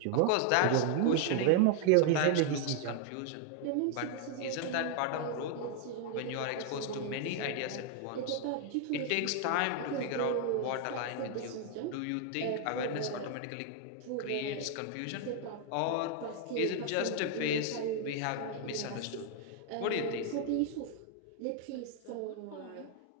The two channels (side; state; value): both; different; correlation 0.00